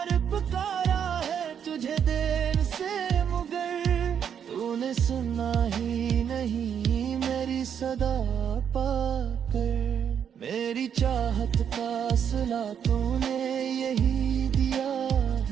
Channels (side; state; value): left; quieter; 8.2 dB